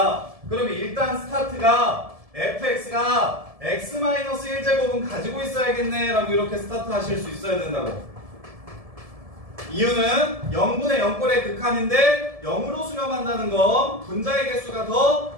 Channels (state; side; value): late; left; 1.7 ms